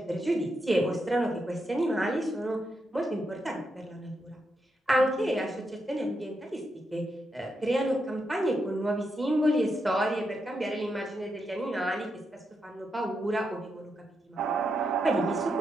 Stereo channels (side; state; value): both; normal; correlation 0.83